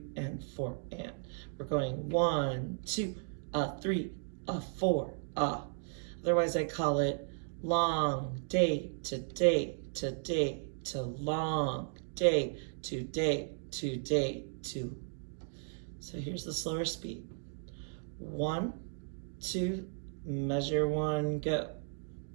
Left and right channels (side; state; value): left; silent; digital silence